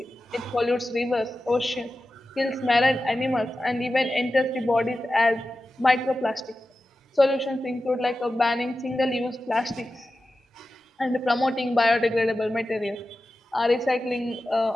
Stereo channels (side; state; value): both; normal; correlation 0.93